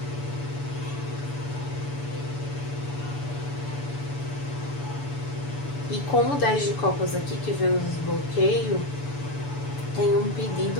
E com o 10 de copas aqui, que vem nos desbloqueio, tem um pedido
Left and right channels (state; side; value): late; right; 6.9 ms